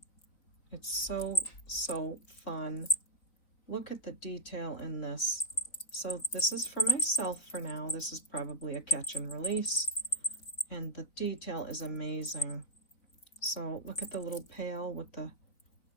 It's so, so fun. Look at the detail in this. So this is for myself for now. This is probably a catch and release. And the detail is amazing. So look at the little pail with the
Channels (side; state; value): right; late; 3.9 ms